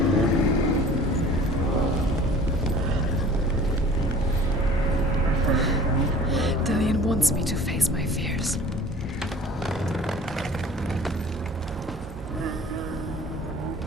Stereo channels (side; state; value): both; normal; correlation 0.46